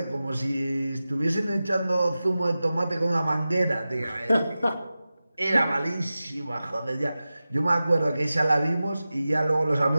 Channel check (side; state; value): both; inverted; correlation -0.95